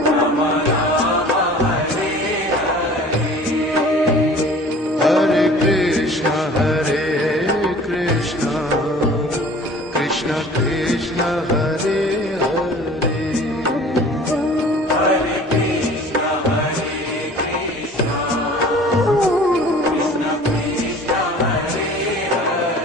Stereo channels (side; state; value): both; normal; correlation 0.46